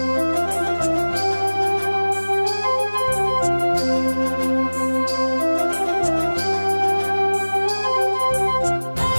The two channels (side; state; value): both; inverted; correlation -1.00